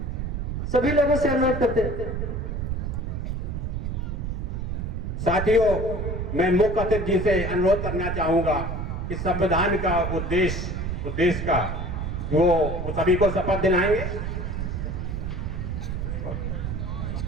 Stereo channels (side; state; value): right; noise; rumble, 3 dB below the sound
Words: सभी लोगों से अनुरोध करते हैं। साथियों, मैं मुख्य अतिथि जी से अनुरोध करना चाहूंगा कि संविधान का उद्देश्य देश का वो सभी को शपथ दिलाएंगे।